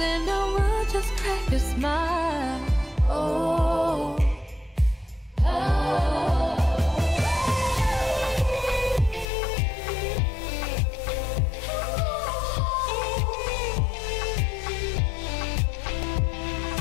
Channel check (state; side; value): drops out; right; at 9.2 s